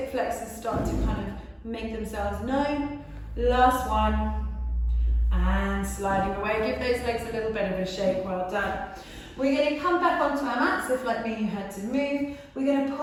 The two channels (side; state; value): both; identical; correlation 1.00